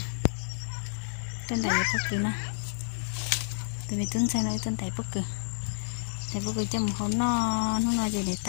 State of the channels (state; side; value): silent; right; digital silence